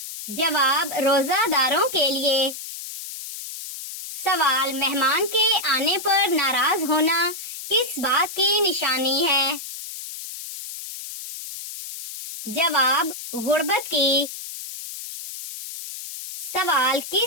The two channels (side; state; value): left; noise; hiss, 10 dB below the sound